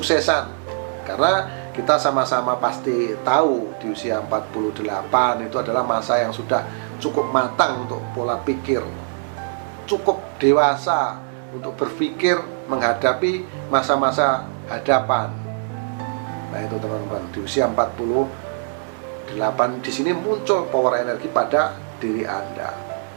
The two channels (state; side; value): silent; left; digital silence